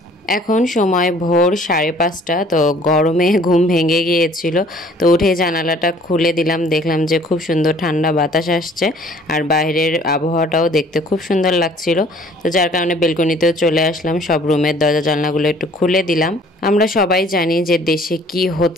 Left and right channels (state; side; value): normal; both; correlation 0.55